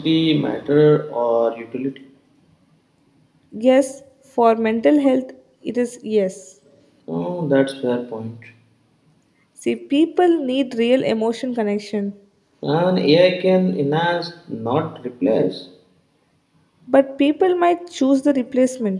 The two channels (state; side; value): identical; both; correlation 1.00